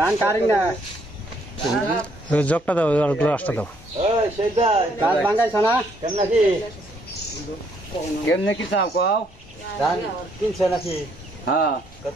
কারিং না জগটা দাও আর গ্লাসটা দাও গাছ ভাঙ্গাইছ না কেমনে কি চাও কও ধান কিনছে নাকি হ্যাঁ কত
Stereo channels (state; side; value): normal; both; correlation 0.69